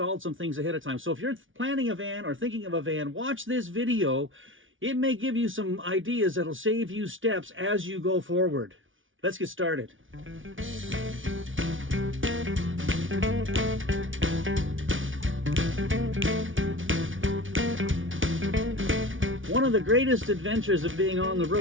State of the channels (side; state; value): left; late; 0.57 ms